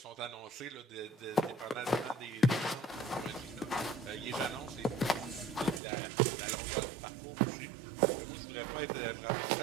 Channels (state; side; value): drops out; left; at 5.8 s